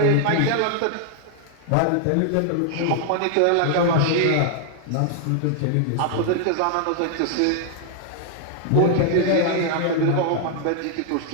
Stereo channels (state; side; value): different; both; correlation 0.00